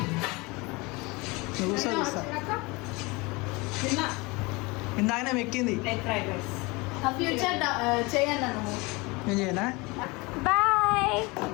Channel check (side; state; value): right; quieter; 25.2 dB